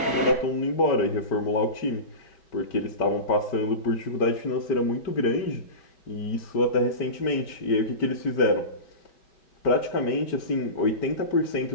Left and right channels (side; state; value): right; late; 4.6 ms